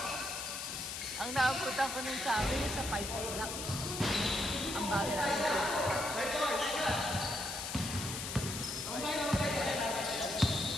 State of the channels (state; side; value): noise; left; hiss, 5 dB below the sound